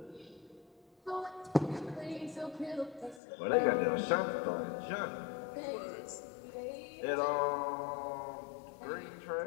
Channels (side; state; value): right; drops out; at 3.2 s